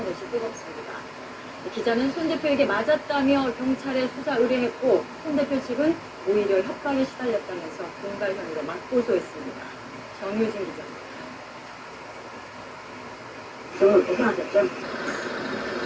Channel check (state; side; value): identical; both; correlation 1.00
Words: 뜨겁습니다. 기자는 손 대표에게 맞았다며 경찰에 수사 의뢰했고 손 대표 측은 오히려 협박에 시달렸다면서 공갈 혐의로 맞고소했습니다. 정유진 기자입니다. 고생하셨죠?